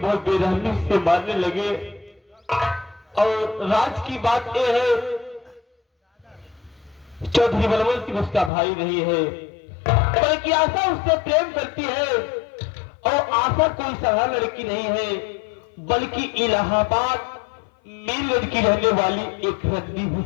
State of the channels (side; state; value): right; drops out; at 8.5 s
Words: बेरहमी से मारने लगे। और राज की बात यह है चौधरी बलवंत सिंह उसका भाई नहीं है, बल्कि आशा उससे प्रेम करती है। और आशा कोई साधारण लड़की नहीं है, बल्कि इलाहाबाद में लड़की रहने वाली एक रद्दी